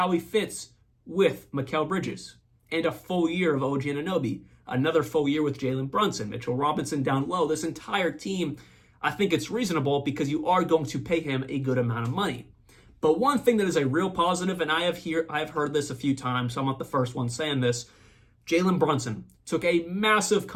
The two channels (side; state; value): both; identical; correlation 1.00